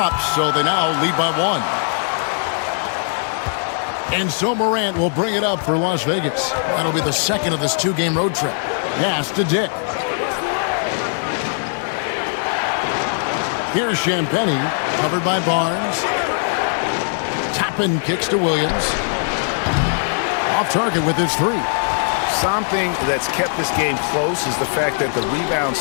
so they now lead by 1. And so Morant will bring it up for Las Vegas. That'll be the second of this 2-game road trip. Pass to Dick. Here's Champagnie, covered by Barnes. Toppin kicks to Williams. Off target with his 3. Something that's kept this game close is the fact that the rebound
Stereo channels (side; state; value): right; silent; digital silence